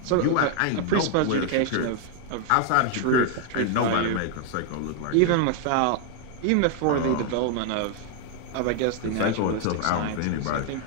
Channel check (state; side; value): different; both; correlation 0.00